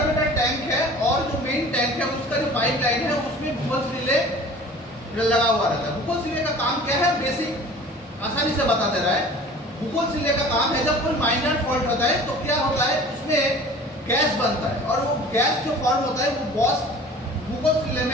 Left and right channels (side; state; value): both; normal; correlation 0.44